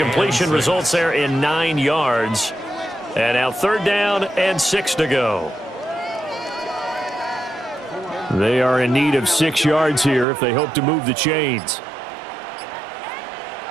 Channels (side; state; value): left; drops out; at 10.2 s